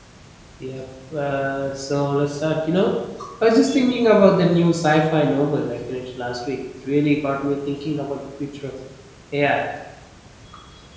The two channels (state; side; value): identical; both; correlation 1.00